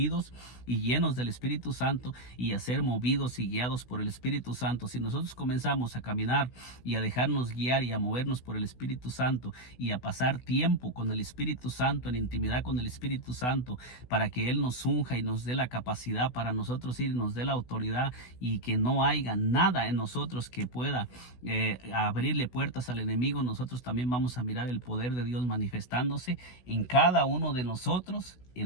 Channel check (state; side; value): late; right; 16 ms